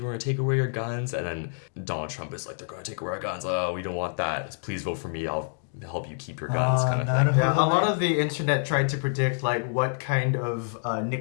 We're going to take away your guns. And then Donald Trump is like, they're going to take away our guns. Oh, we don't want that. Please vote for me. I'll help you keep your guns. Kind of thing. Yeah, a lot of the internet tried to predict like what kind of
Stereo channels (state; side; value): silent; right; digital silence